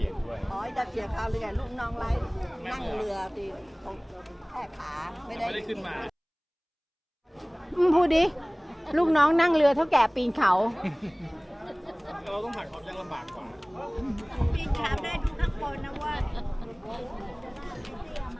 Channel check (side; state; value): both; identical; correlation 1.00